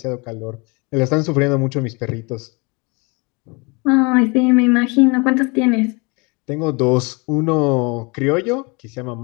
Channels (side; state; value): right; quieter; 28.7 dB